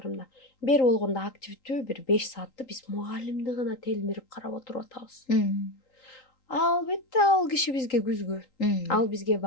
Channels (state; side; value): late; right; 3.8 ms